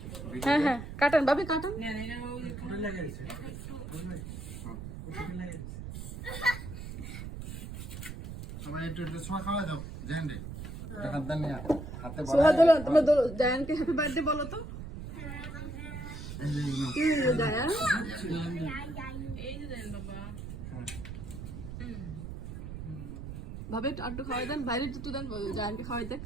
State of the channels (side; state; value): right; noise; rumble, 8 dB below the sound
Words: হ্যাঁ হ্যাঁ কাটেন ভাবি কাটেন সবাই একটু একটু ছোঁয়া খাওয়া দাও জেন্ডে দেখা দেন না হাতে সোহা দোলো তোমরা জায়ানকে হ্যাপি বার্থডে বলো তো জায়ান ভাবে একটু খাওয়াই দেন বাইরে একটু দেন জায়ানকে খাওয়াই দেন